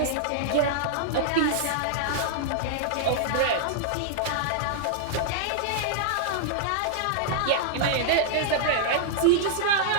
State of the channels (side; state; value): both; different; correlation -0.01